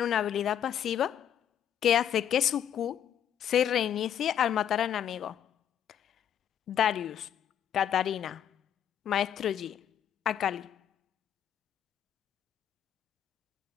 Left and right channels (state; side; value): quieter; right; 9.7 dB